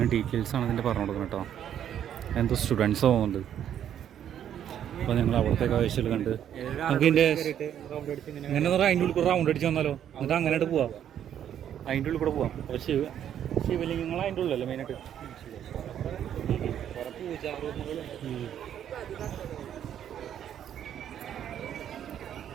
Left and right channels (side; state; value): left; quieter; 9.9 dB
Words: ഡീറ്റെയിൽസാണ് ഇതിൻ്റെ പറഞ്ഞു കൊടുക്കണം കേട്ടോ. എന്തോ സ്റ്റുഡൻസ് പോകുന്നുണ്ട്. അപ്പോൾ ഞങ്ങൾ അവിടുത്തെ കാഴ്ചകൾ കണ്ട് നമുക്ക് ഇതിൻ്റെ ഇങ്ങനെ അതിൻ്റെ ഉള്ളിൽ കൂടെ റൗണ്ട് അടിച്ച് വന്നാലോ? എന്നിട്ട് അങ്ങനെയായിട്ട് പോവാം. അതിൻ്റെ ഉള്ളിൽ കൂടെ പോവാം. അപ്പോൾ ശിവലിംഗങ്ങൾ അതിൻ്റെ ഉള്ളിലല്ലേ മെയിനായിട്ട്.